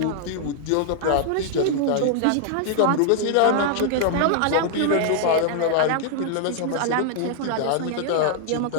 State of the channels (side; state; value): both; different; correlation 0.00